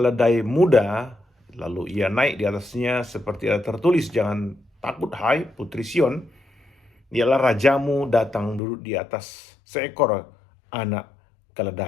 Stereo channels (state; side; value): drops out; right; at 8.6 s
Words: muda, lalu ia naik di atasnya seperti ada tertulis, "Jangan takut hai putri Sion, ialah rajamu datang duduk di atas seekor anak